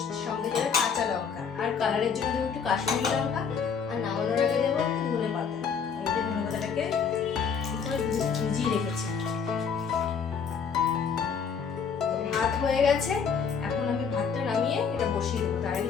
সঙ্গে দেবে কাঁচা লঙ্কা, আর কালারের জন্য দেবো একটু কাশ্মীরি লঙ্কা, আর নামানোর আগে দেবো একটু ধনে পাতা। এই যে ধনে পাতাটাকে ভিজিয়ে রেখেছি। তো ভাত হয়ে গেছে, এখন আমি ভাতটা নামিয়ে এটা বসিয়ে দেবো। তার আগে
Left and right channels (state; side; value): quieter; right; 6.3 dB